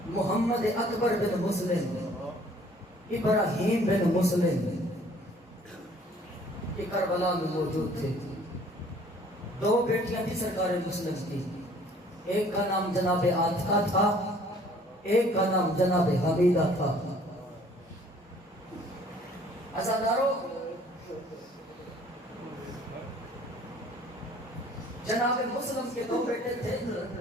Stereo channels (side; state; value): both; normal; correlation 0.56